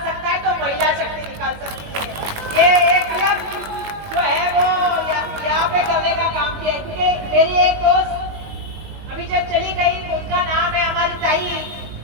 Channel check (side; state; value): left; late; 20 ms